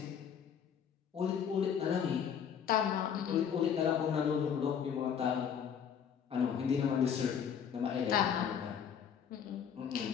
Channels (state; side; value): quieter; right; 7.9 dB